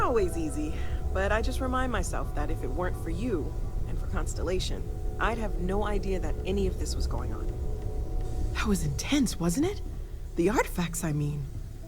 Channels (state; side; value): identical; both; correlation 1.00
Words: easy, but I just remind myself that if it weren't for you, and for Constellation, I'd have no idea that any of this was going on. That was intense, wasn't it? The artifacts, I mean.